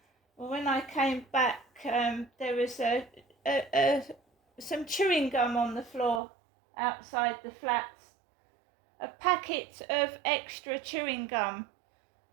Well, when I came back, there was some chewing gum on the floor outside the flats. A packet of extra chewing gum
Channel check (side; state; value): left; drops out; at 6.2 s